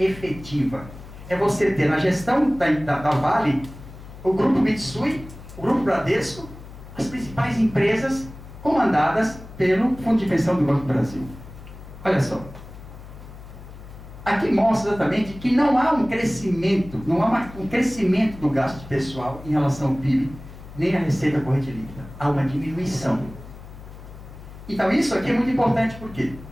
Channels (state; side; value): noise; left; hum, 16 dB below the sound